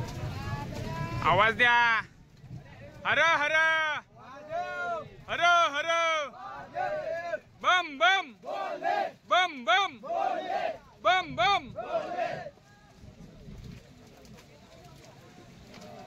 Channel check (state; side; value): identical; both; correlation 1.00